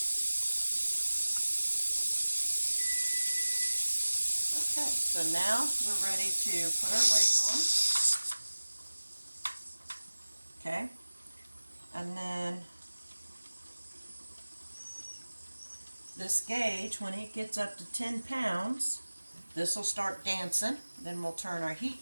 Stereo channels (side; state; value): both; inverted; correlation -1.00